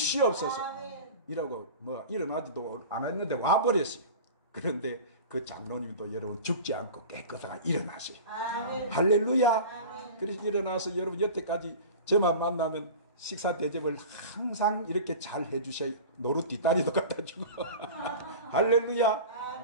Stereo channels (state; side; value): inverted; both; correlation -0.35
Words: 이라고 일어나지도 않았는데 와버렸어요. 그런데 그 장로님도 여러분 죽지 않고 깨끗하게 일어나세요. 할렐루야. 그래서 일어나서 여러분 여태까지 저만 만나면 식사 대접을 항상 이렇게 잘 해주셔요. 노루 뒷다리도 갖다 주고. 할렐루야.